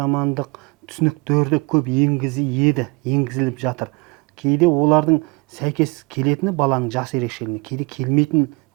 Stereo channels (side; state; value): left; quieter; 28.9 dB